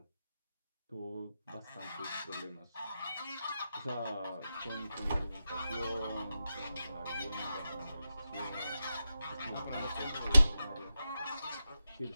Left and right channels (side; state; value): both; inverted; correlation -0.90